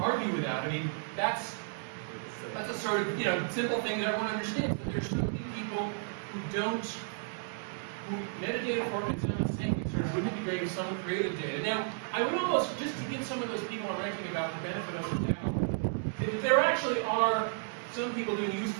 with that. I mean, that's a sort of simple thing that everyone understands. But there's so many people who metadata formats don't think sort of wouldn't it be great if someone created data. Now, I would almost, just to give some of those people I'm ranking about the benefit of the doubt, that there actually are some people doing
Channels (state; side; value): silent; left; digital silence